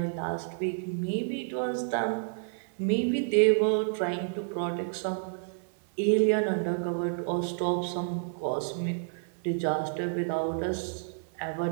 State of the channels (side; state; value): left; silent; 58 dB below the other